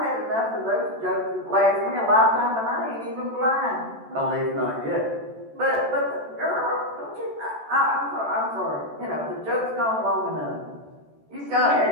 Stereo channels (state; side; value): late; left; 14 ms